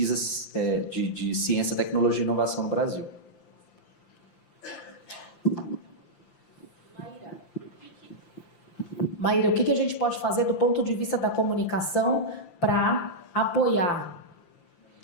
de ciência, tecnologia e inovação no Brasil. Maíra, o que a gente pode fazer do ponto de vista da comunicação para apoiar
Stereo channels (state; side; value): late; right; 5.8 ms